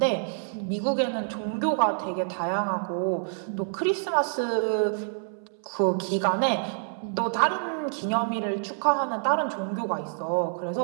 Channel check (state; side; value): silent; left; 60 dB below the other